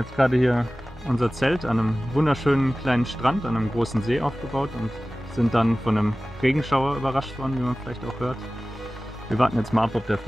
gerade hier unser Zelt an einem wunderschönen kleinen Strand, an einem großen See aufgebaut und sind dann von einem Regenschauer überrascht worden, wie man vielleicht auch hört. Wir warten jetzt mal ab, ob der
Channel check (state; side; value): noise; right; hum, 23 dB below the sound